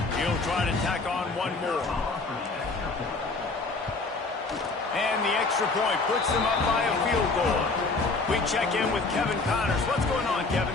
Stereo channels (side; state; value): right; quieter; 3.7 dB